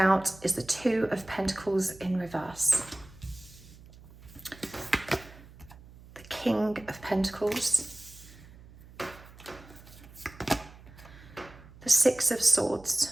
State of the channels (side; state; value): right; noise; hum, 20 dB below the sound